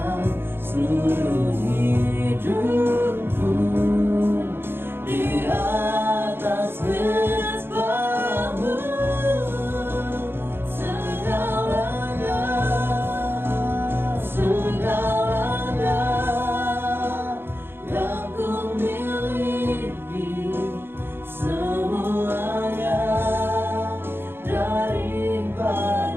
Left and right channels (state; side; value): late; left; 0.11 ms